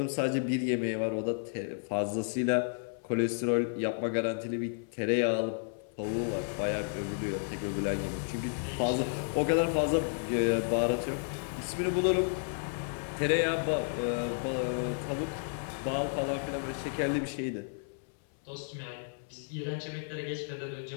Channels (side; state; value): right; silent; 56 dB below the other